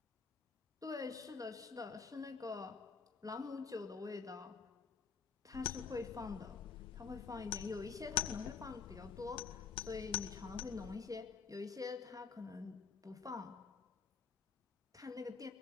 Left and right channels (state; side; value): quieter; right; 5.8 dB